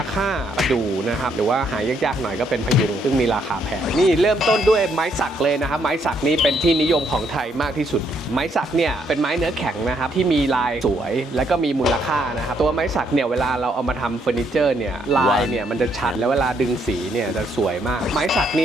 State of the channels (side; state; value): both; normal; correlation 0.72